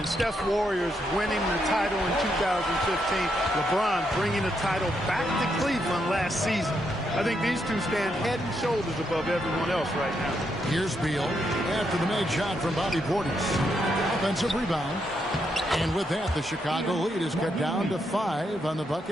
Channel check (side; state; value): both; normal; correlation 0.79